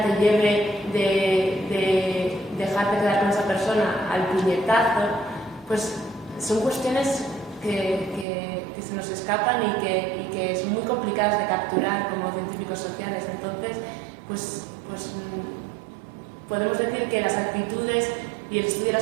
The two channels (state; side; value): drops out; left; at 8.2 s